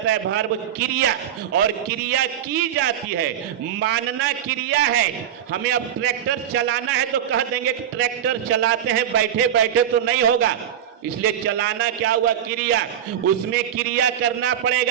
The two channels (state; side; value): quieter; left; 10.0 dB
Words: है भर्ब क्रिया, और क्रिया की जाती है। मानना क्रिया है। हमें अब ट्रैक्टर चलाना है तो कह देंगे कि ट्रैक्टर चलाते हैं, बैठे बैठे तो नहीं होगा, इसलिए चलाना क्या हुआ, क्रिया, उसमें क्रिया करना